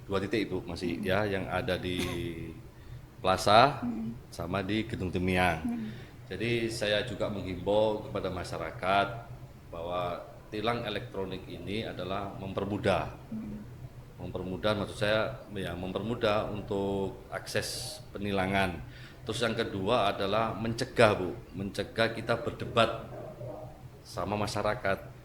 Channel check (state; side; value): identical; both; correlation 1.00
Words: 2 titik Bu masih ya, yang ada di Plaza sama di Gedung Temyang. Jadi saya juga menghimbau kepada masyarakat bahwa tilang elektronik ini adalah mempermudah. Mempermudah maksud saya ya mempermudah untuk akses penilangan. Terus yang kedua adalah mencegah Bu, mencegah kita berdebat sama masyarakat.